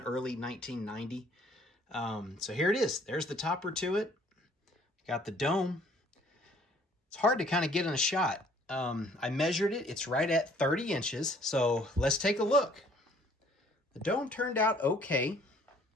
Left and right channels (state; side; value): normal; both; correlation 0.58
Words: early 1990. So here it is. There's the topper to it. Got the dome. It's hard to kind of get in a shot. I measured it. It's right at 30 inches. So let's take a look. The dome turned out okay.